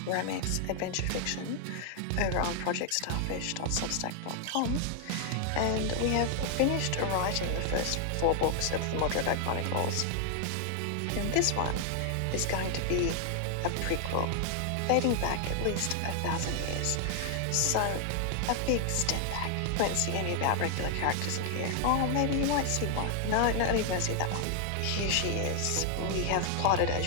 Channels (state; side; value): different; both; correlation 0.00